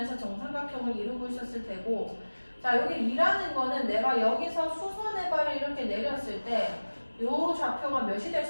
정삼각형을 이루고 있었을 테고, 자, 여기 2라는 거는 내가 여기서 수선의 발을 이렇게 내렸을 때 요 좌표가 몇이 될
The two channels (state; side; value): inverted; both; correlation -1.00